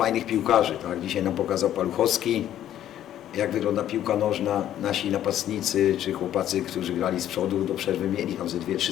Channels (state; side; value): quieter; right; 11.6 dB